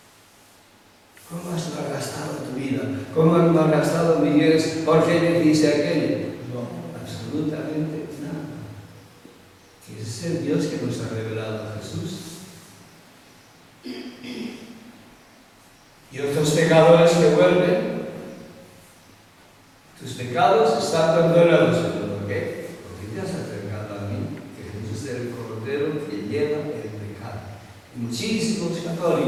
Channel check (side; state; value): both; identical; correlation 1.00